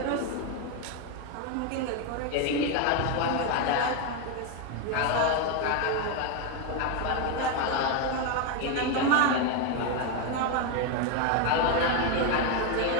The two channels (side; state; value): both; different; correlation 0.02